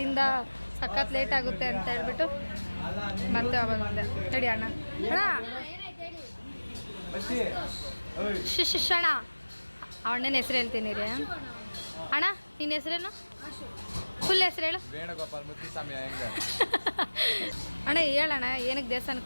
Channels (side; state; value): both; inverted; correlation -1.00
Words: ಸಖತ್ ಲೇಟ್ ಆಗುತ್ತೆ ಅಂತ ಹೇಳ್ಬಿಟ್ಟು ಮತ್ತೆ ಆವಾಗ ಬಂದೆ. ತಡಿ ಅಣ್ಣ ಶಿಶಣ ಅಣ್ಣನ ಹೆಸರು ಹೇಳ್ತೀನಿ ರೀ. ಅಣ್ಣ ನಿನ್ನ ಹೆಸರೇನು? ಫುಲ್ ಹೆಸರು ಹೇಳು. ಅಣ್ಣ ಹೇಳಣ್ಣ, ಏನಕ್ಕೆ